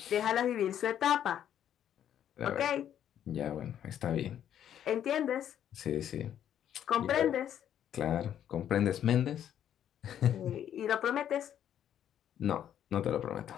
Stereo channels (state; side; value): quieter; right; 10.1 dB